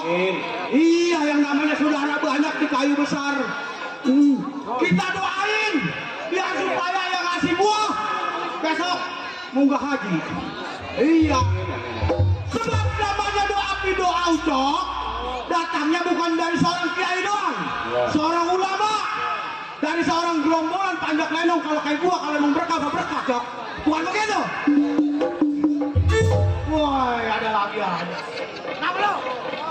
Iya, yang namanya saudara banyak di kayu besar. Kita doain biar supaya yang ngasih buah besok munggah haji. Iya. Sebab namanya doa doa Ucok datangnya bukan dari seorang kiai doang, seorang ulama, dari seorang gerombolan panjat lenong. Kalau kayak gua kalau mau berkah berkah Cok, bukan begitu? Woi, ada lagi aja. Kenapa lo?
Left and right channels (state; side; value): identical; both; correlation 1.00